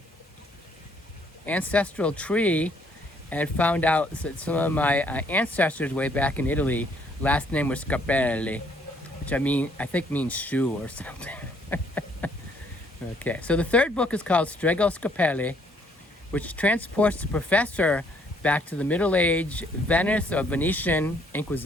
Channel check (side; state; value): both; normal; correlation 0.66